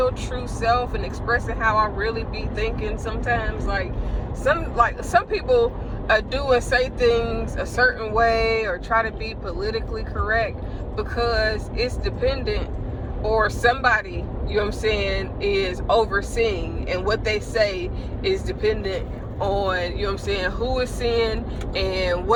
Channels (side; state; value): both; identical; correlation 1.00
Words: true self and expressing how I really be thinking sometimes. Like some people do and say things a certain way or try to be politically correct because it's dependent, or somebody, you know what I'm saying, is overseeing, and what they say is dependent on, you know what I'm saying, who is seeing and